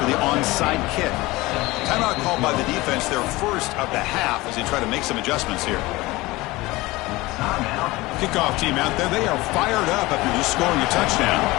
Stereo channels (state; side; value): quieter; right; 20.6 dB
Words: the onside kick. Timeout called by the defense, their first of the half, as they try to make some adjustments here. Kickoff team out there. They are fired up after just scoring a touchdown.